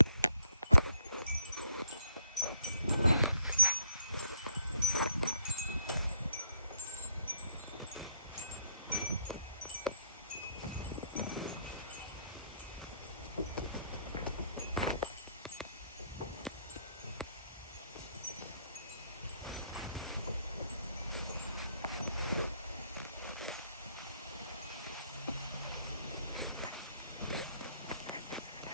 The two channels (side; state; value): both; inverted; correlation -0.70